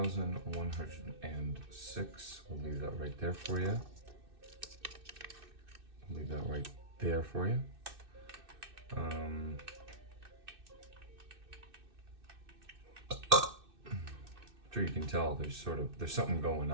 We'll leave that right there for you. I'll leave that right there for you. I'm sure you can tell there's something going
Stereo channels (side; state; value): left; late; 2.6 ms